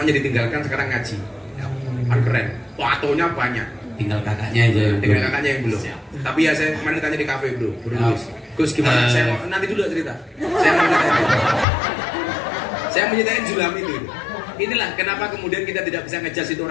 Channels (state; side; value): drops out; right; at 11.7 s